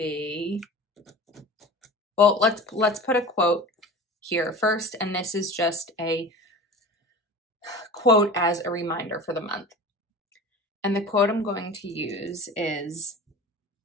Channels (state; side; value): normal; both; correlation 0.36